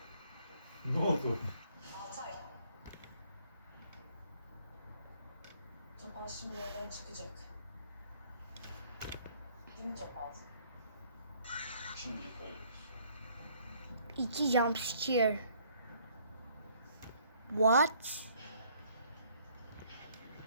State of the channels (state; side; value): inverted; both; correlation -0.62